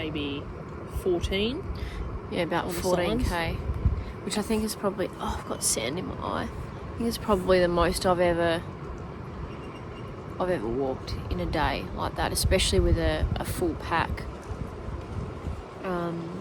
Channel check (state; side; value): identical; both; correlation 1.00